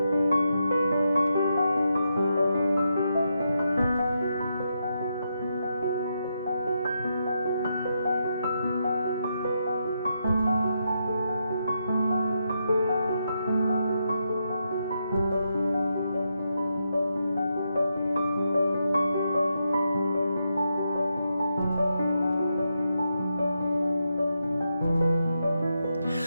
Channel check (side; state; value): both; inverted; correlation -0.83